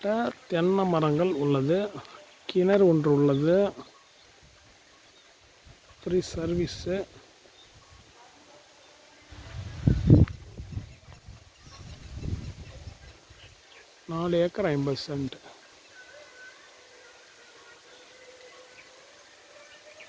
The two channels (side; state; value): both; identical; correlation 1.00